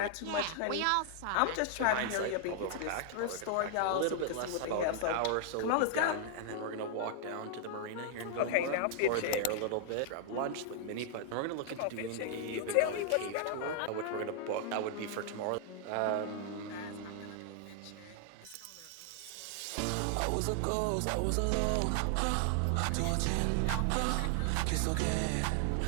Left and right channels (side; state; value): both; different; correlation 0.00